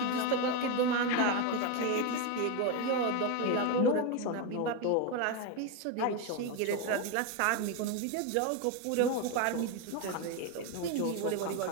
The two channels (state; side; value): different; both; correlation 0.03